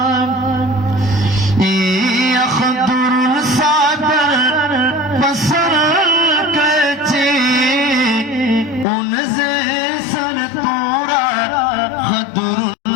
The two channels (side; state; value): right; drops out; at 8.8 s